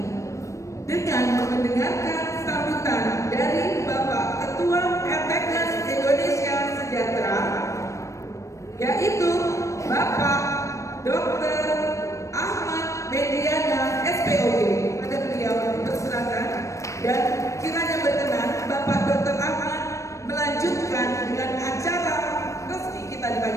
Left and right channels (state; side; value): late; right; 0.15 ms